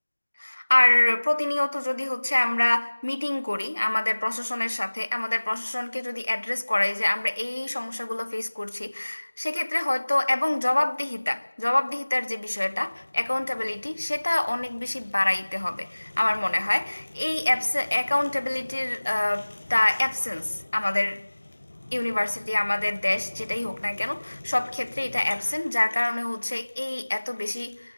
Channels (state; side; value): inverted; both; correlation -1.00